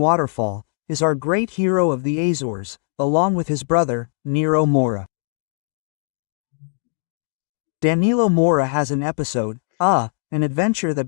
is our great hero of the Azores, along with his brother, Nero Moura. Danilo Moura has an episode, an adventure that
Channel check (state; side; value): silent; right; 65 dB below the other